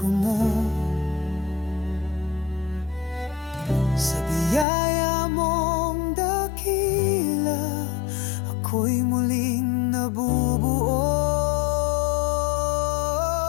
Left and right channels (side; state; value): right; drops out; at 4.7 s